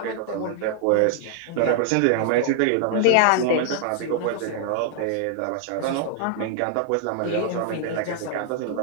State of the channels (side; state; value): both; different; correlation 0.00